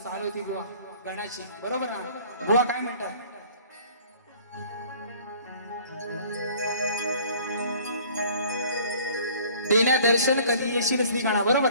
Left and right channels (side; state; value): both; inverted; correlation -0.52